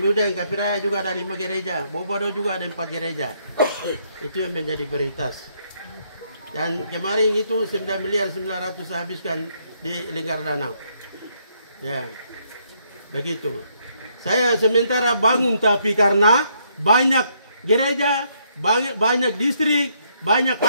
Kapiraya juga ada 5 gereja, Bobodo juga ada 4 gereja. Itu yang menjadi prioritas. Dan kemarin itu 9 miliar 900 saya habiskan di Lingkar Danau. Ya, begitu. Saya sementara bangun tapi karena banyak gereja, banyak distrik, banyak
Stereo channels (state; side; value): inverted; both; correlation -0.72